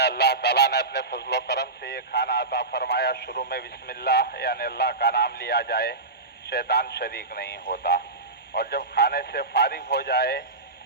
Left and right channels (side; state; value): left; quieter; 3.4 dB